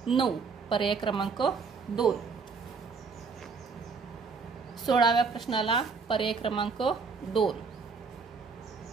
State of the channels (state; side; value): quieter; left; 5.0 dB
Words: 9, पर्याय क्रमांक 2। 16व्या प्रश्नाला पर्याय क्रमांक 2।